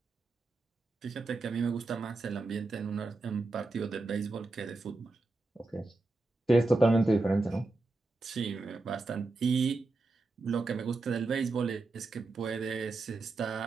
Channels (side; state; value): left; quieter; 3.2 dB